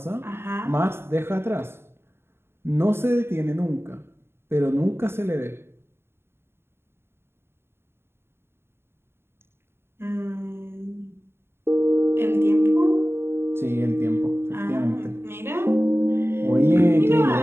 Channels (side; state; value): left; late; 0.11 ms